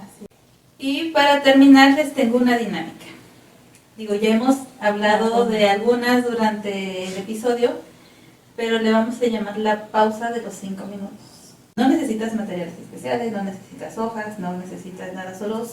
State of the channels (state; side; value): identical; both; correlation 1.00